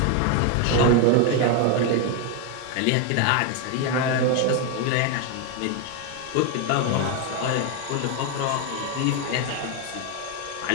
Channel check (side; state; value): both; different; correlation 0.01